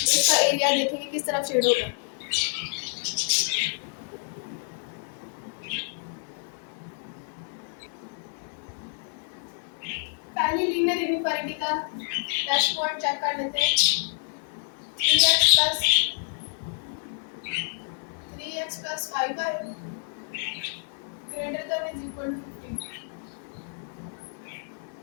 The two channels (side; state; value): right; silent; 59 dB below the other